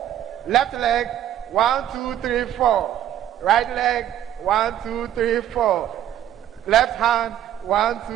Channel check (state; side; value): quieter; left; 11.4 dB